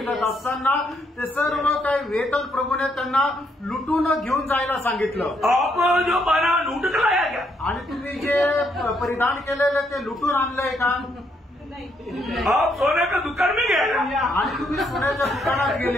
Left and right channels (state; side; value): normal; both; correlation 0.74